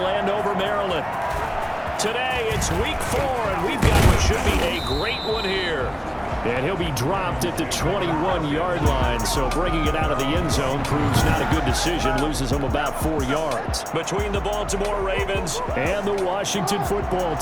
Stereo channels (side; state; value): both; identical; correlation 1.00